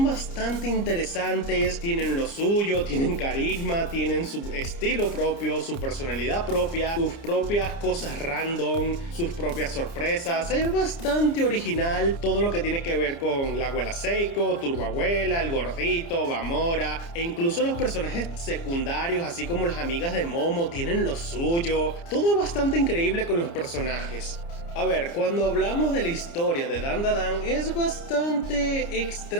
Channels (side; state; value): right; late; 29 ms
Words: bastante interesantes. Tienen lo suyo, tienen carisma, tienen su estilo propio, su personalidad propia, sus propias cosas random, sus propias sorpresas. Es bastante original todo lo que tiene que ver con la abuela Seiko, Turbo Abuela, el gordito, Bamora, e incluso los personajes secundarios, así como las amigas de Momo, tienen lo suyo. Todo es bastante increíble con los personajes. A ver, cuando hablamos de la historia de Dandadan es bastante